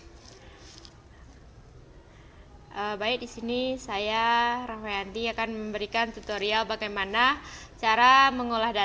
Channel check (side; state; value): both; identical; correlation 1.00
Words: Baik, di sini saya Rahmayanti akan memberikan tutorial bagaimana cara mengolah